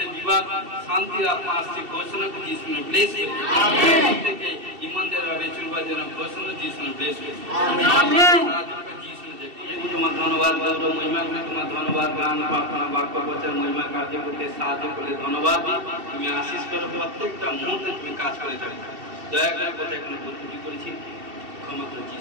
বিবাদ শান্তির আত্মা আসছে ঘোষণা করে যিশু নামে ব্লেস করি আমেন। থেকে ইমানদার ভাবে চলবার জন্য ঘোষণা যিশু নামে ব্লেস করি আমেন। তোমার ধন্যবাদ গৌরব মহিমা করে তোমার ধন্যবাদ গান প্রার্থনা বাক্য বচন মহিমা কার্য করতে সাহায্য করলে ধন্যবাদ তুমি আশীষ করো প্রত্যেকটা মুহূর্তে তুমি কাজ করে থাকো দয়া করে কথা এখানে ভুল করেছি ক্ষমা করে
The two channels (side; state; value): left; late; 2.7 ms